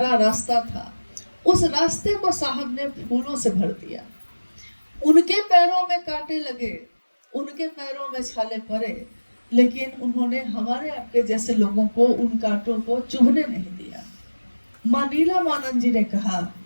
रास्ता था, उस रास्ते को साहब ने फूलों से भर दिया। उनके पैरों में कांटे लगे, उनके पैरों में छाले पड़े, लेकिन उन्होंने हमारे आपके जैसे लोगों को उन कांटों को चुभने नहीं दिया। मां नीलामानंद जी ने कहा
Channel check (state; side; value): inverted; both; correlation -1.00